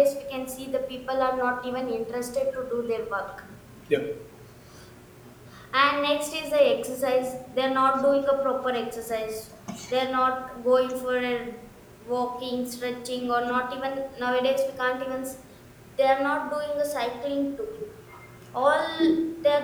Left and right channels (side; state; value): both; identical; correlation 1.00